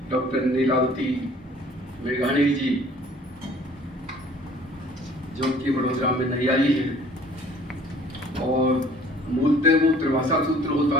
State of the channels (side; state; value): both; normal; correlation 0.53